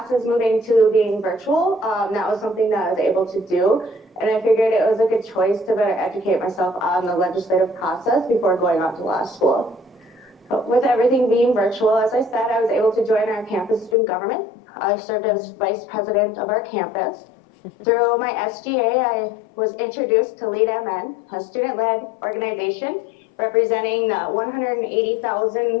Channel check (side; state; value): right; drops out; at 14.0 s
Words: moving to being virtual, that was something that I was able to do. And I figured it was a good choice to better educate myself on the legislative process before going on to law school. But with everything being virtual, as I said, I was able to join our campus student government. I served as vice president of our campus. Through my SGA, I was introduced to Lead MN, a student-led organization representing